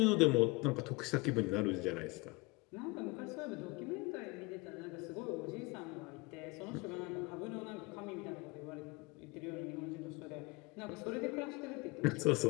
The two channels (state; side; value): quieter; right; 25.6 dB